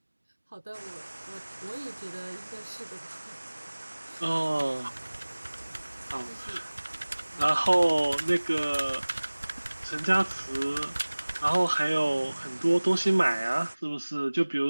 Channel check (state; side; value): inverted; both; correlation -1.00